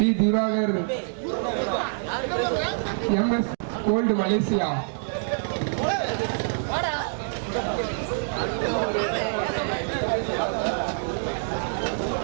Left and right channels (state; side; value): silent; left; digital silence